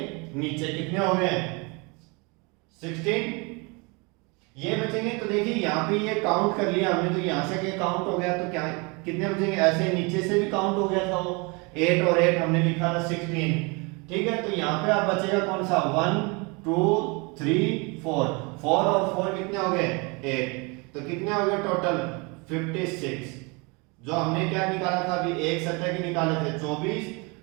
नीचे, कितने हो गए 16 ये बचेंगे। तो देखिए यहाँ पे ये काउंट कर लिया हमने, तो यहाँ से ये काउंट हो गया, तो क्या कितने बचेंगे, ऐसे नीचे से भी काउंट हो गया था वो 8 और 8 हमने लिखा था 16। ठीक है, तो यहाँ पे आप बचेगा कौन सा 1 2 3 4, 4 और 4 कितने हो गए 8। तो कितने हो गए टोटल 56। जो हमने क्या निकाला था अभी, एक सतह के निकाले थे 24,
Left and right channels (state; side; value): quieter; left; 29.3 dB